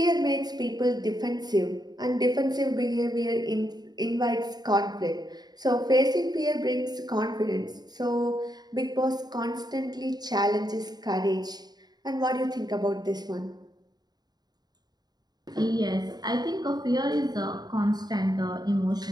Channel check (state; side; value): late; left; 0.20 ms